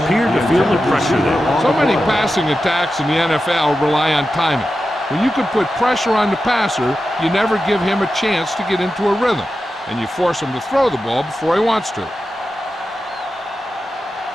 to feel the pressure there. So many passing attacks in the NFL rely on timing. When you can put pressure on the passer, you never give him a chance to get into a rhythm, and you force him to throw the ball before he wants to.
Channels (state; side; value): normal; both; correlation 0.91